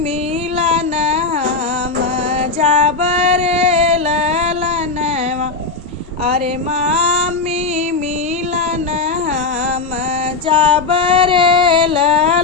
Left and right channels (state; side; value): quieter; right; 4.3 dB